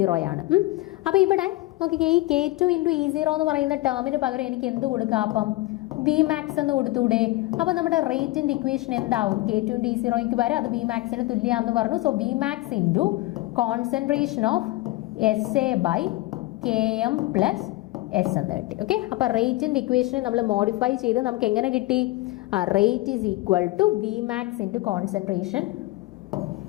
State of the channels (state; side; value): quieter; right; 19.1 dB